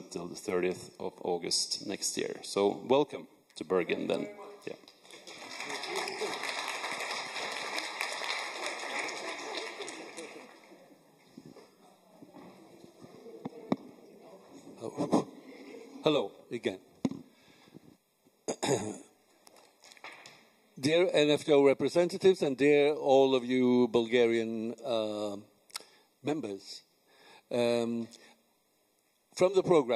till the 30th of August next year. So welcome to Bergen then. Yeah. Hello again. Dear NFTO representatives and dear all of you Bulgarian members, from the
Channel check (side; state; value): both; identical; correlation 1.00